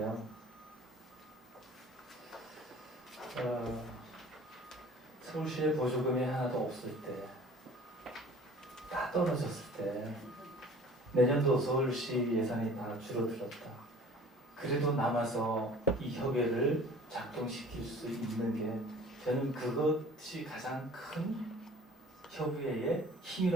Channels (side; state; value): both; normal; correlation 0.48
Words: 서울시에 보조금이 하나도 없을 때, 다 떨어졌을 때, 내년도 서울시 예산이 다 줄어들었다. 그래도 남아서 이 협의회를 작동시킬 수 있는 게 저는 그것이 가장 큰 협의회의